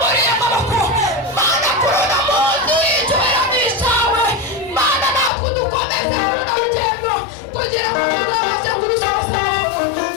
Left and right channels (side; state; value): right; drops out; at 5.3 s